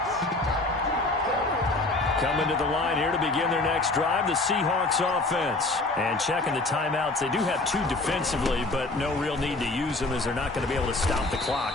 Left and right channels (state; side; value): quieter; right; 3.0 dB